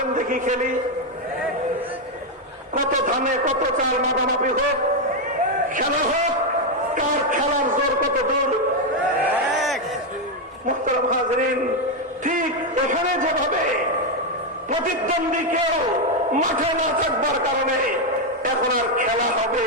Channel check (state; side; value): normal; both; correlation 0.04